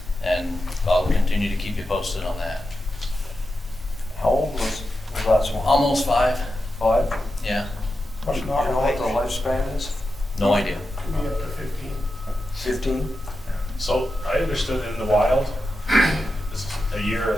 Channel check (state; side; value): normal; both; correlation 0.89